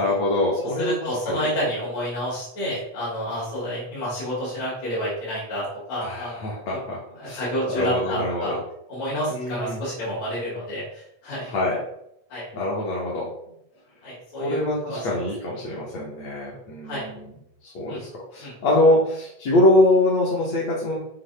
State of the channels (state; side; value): late; right; 8.3 ms